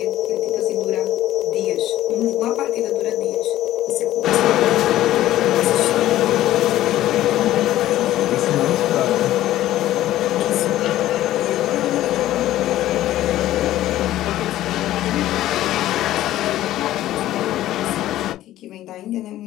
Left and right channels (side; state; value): right; quieter; 14.1 dB